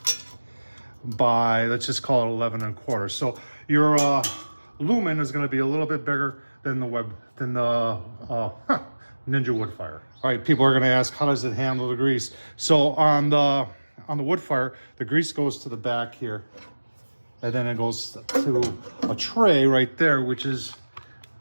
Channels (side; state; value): both; inverted; correlation -1.00